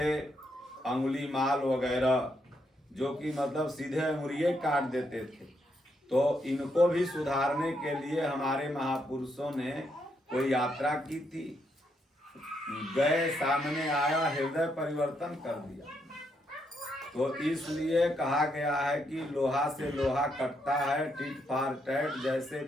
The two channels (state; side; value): normal; both; correlation 0.77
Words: अंगुली माल वगैरह, जो कि मतलब सीधे अंगुलियां काट देते थे। तो इनको भी सुधारने के लिए हमारे महापुरुषों ने कोई यात्रा की थी, गए, सामने आया, हृदय परिवर्तन कर दिया। तो इसलिए कहा गया है कि लोहा से लोहा कटता है, टिट फॉर टैट, जैसे